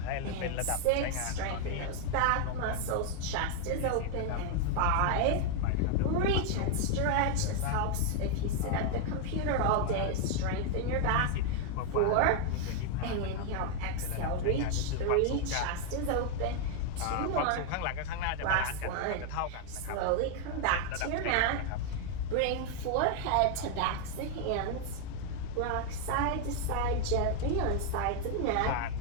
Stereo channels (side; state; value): both; different; correlation 0.00